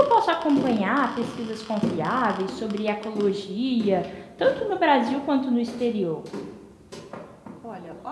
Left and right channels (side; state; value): both; identical; correlation 1.00